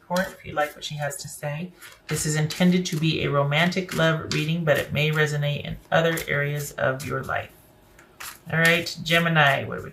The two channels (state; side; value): identical; both; correlation 1.00